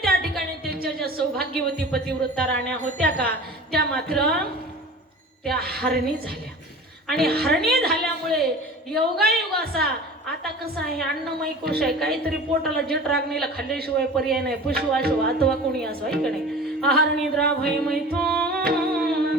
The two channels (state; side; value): normal; both; correlation 0.39